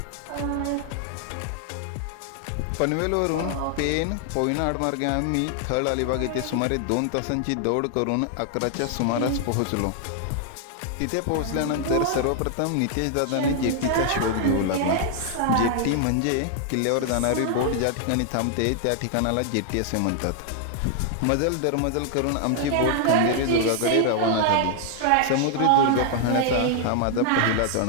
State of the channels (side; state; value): both; different; correlation 0.00